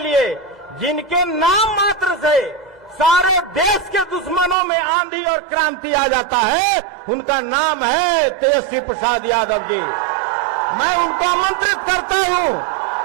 जिनके नाम मात्र से सारे देश के दुश्मनों में आंधी और क्रांति आ जाता है, उनका नाम है तेजस्वी प्रसाद यादव जी। मैं उनको आमंत्रित करता हूं,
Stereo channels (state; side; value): drops out; left; at 4.5 s